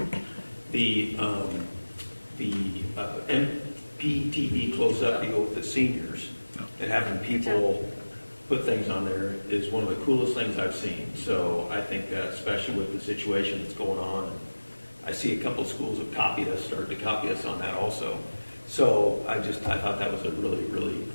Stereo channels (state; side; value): inverted; both; correlation -1.00